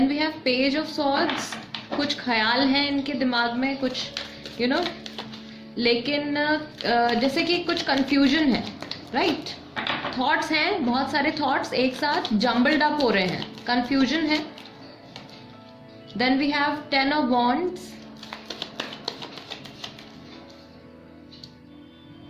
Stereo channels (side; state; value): both; identical; correlation 1.00